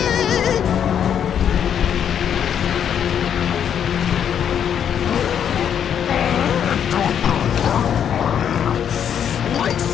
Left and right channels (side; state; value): right; quieter; 8.7 dB